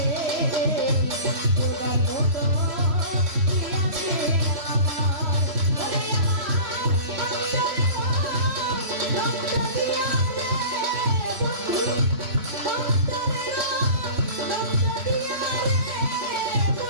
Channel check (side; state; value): left; late; 3.1 ms